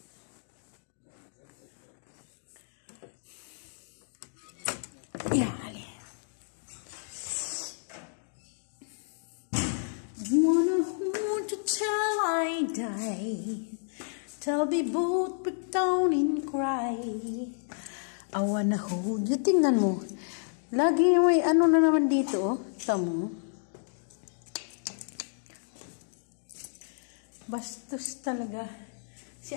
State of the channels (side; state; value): right; silent; digital silence